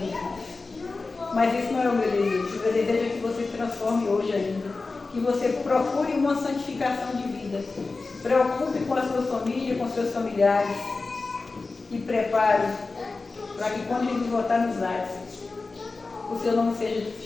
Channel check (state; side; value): quieter; right; 3.8 dB